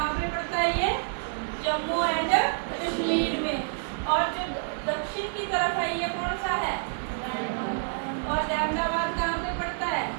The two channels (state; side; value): silent; left; digital silence